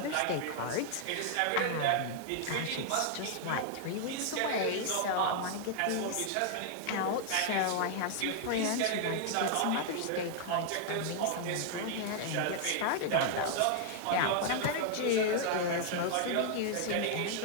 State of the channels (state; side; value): different; both; correlation 0.00